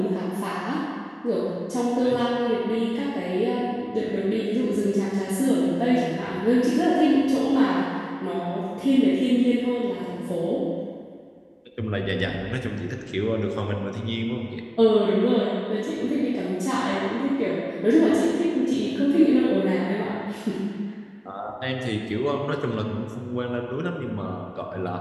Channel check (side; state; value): both; identical; correlation 1.00